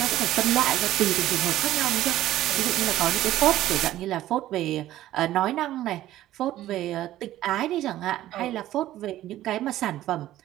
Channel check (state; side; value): quieter; left; 14.1 dB